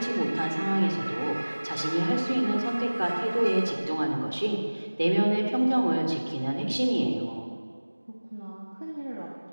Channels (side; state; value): both; inverted; correlation -1.00